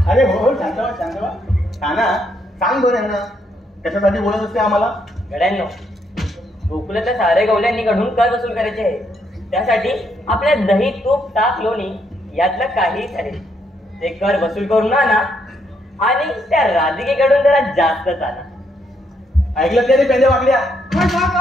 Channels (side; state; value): both; normal; correlation 0.75